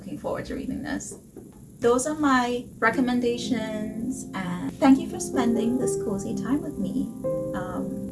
forward to reading this. Those are my recommendations, and thank you for spending this cozy time with me.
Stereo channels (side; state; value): both; identical; correlation 1.00